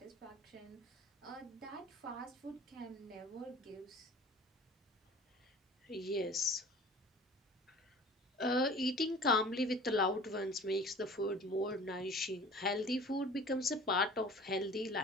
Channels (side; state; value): both; normal; correlation 0.44